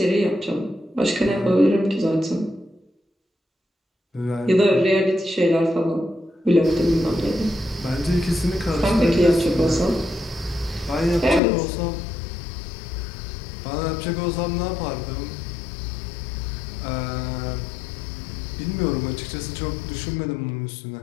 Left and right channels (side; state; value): right; drops out; at 11.4 s